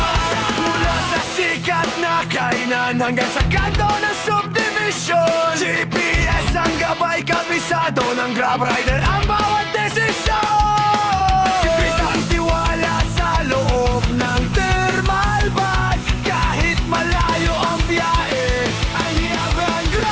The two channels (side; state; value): both; identical; correlation 1.00